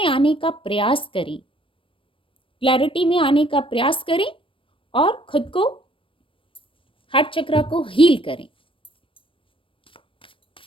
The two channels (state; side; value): late; right; 0.25 ms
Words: आने का प्रयास करें, क्लैरिटी में आने का प्रयास करें और खुद को, हार्ट चक्र को हील करें,